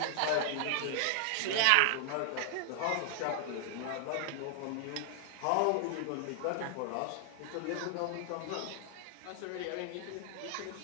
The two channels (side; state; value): both; different; correlation 0.00